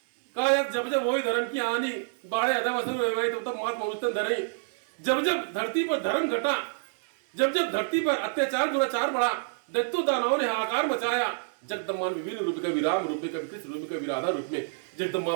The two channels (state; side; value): silent; left; digital silence